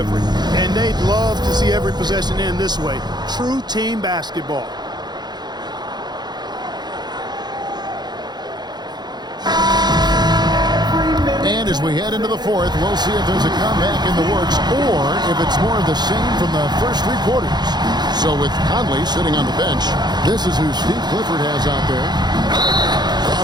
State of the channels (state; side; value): late; left; 0.20 ms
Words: And they'd love to see every possession end this way. True team basketball. And as we head into the fourth, we'll see if there's a comeback in the works or if it's more of the same from the first 3 quarters. So with Conley sitting on the bench, this is who Steve Clifford has out there.